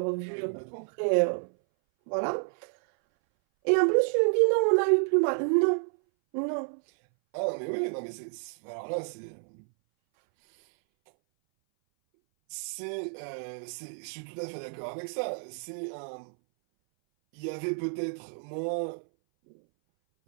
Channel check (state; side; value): silent; left; 58 dB below the other